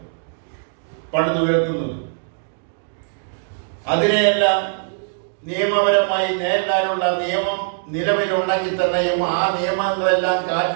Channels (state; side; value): silent; left; digital silence